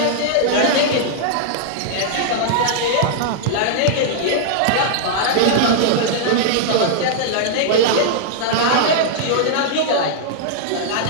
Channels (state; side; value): different; both; correlation -0.01